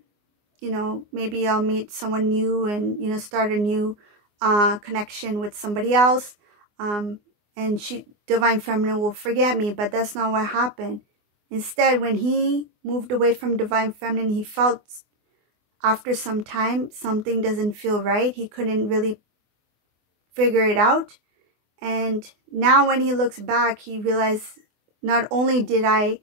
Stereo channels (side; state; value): left; late; 24 ms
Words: maybe I'll meet someone new and start a new connection with somebody else, and divine feminine will forget me. But that's not what happened. Instead, when he moved away from divine feminine, he felt after some time something doesn't feel right. He couldn't really figure it out, and now when he looks back, he realized, not only did I